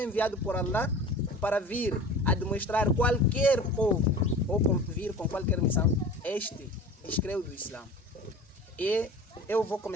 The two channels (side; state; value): both; normal; correlation 0.39